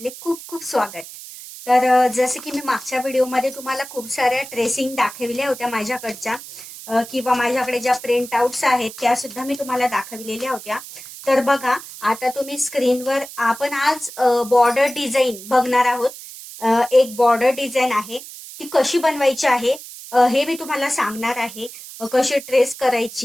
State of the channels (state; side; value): noise; right; hiss, 14 dB below the sound